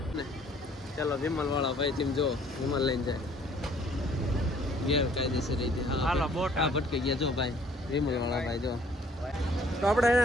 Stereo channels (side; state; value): both; normal; correlation 0.59